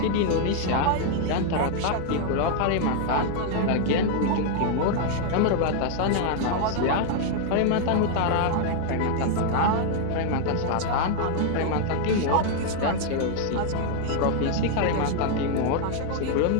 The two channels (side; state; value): both; different; correlation 0.00